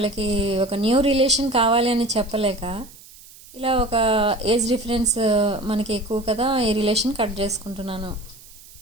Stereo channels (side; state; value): right; noise; hiss, 21 dB below the sound